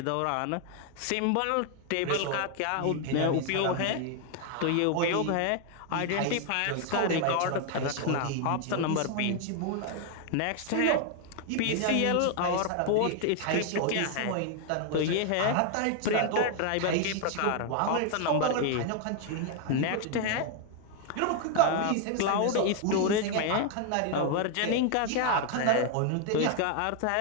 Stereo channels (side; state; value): both; different; correlation 0.00